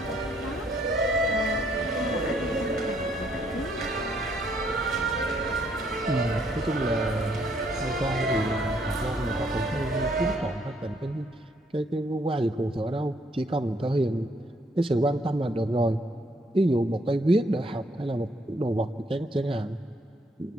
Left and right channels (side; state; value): both; normal; correlation 0.69